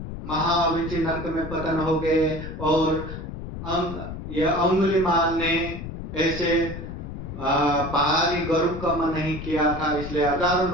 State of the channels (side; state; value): left; noise; rumble, 8 dB below the sound